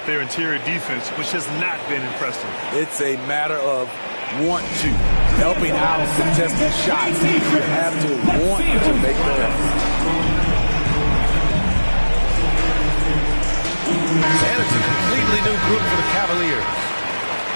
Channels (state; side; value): inverted; both; correlation -1.00